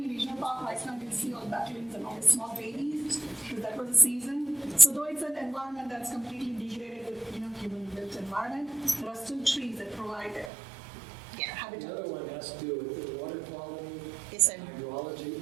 regional park right now, you'll see all ducklings and all the small babies, because that was the season. So though it's an environment that's completely degraded with, human-built environment, there are still trees that provide habitat. The other one has to do with the water quality, yes, sir. hydrology,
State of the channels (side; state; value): left; drops out; at 10.5 s